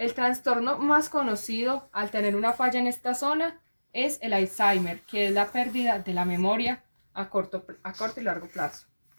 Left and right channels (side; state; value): both; inverted; correlation -1.00